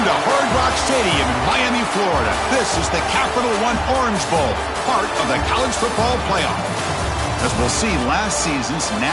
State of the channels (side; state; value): both; identical; correlation 1.00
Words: to Hard Rock Stadium in Miami, Florida. This is the Capital One Orange Bowl, part of the college football playoff. As we'll see, last season's